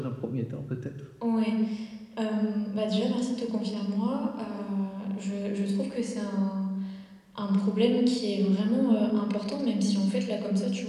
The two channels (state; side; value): identical; both; correlation 1.00